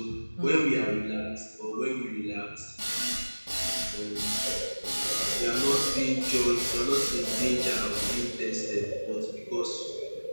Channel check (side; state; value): both; inverted; correlation -1.00